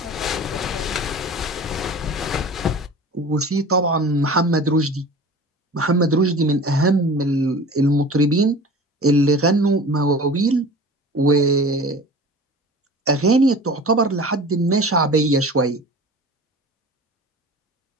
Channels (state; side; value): normal; both; correlation 0.39